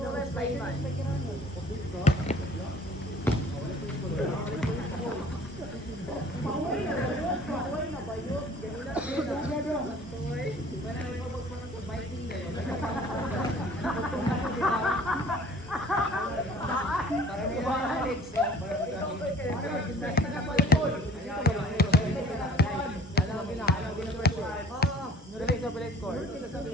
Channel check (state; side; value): normal; both; correlation 0.50